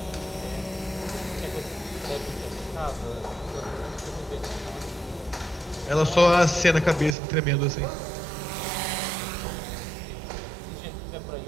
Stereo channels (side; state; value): left; drops out; at 7.2 s